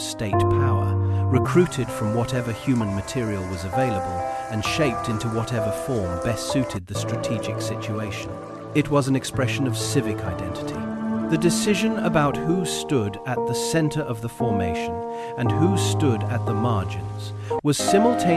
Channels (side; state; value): both; identical; correlation 1.00